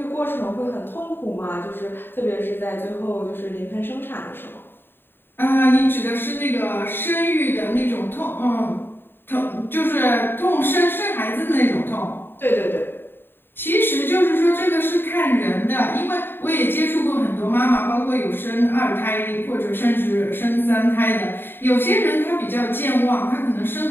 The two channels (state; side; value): late; right; 0.10 ms